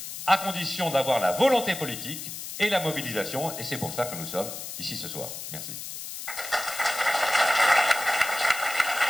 à condition d'avoir la volonté politique et la mobilisation, et c'est pour ça que nous sommes ici ce soir. Merci.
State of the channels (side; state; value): left; noise; hiss, 9 dB below the sound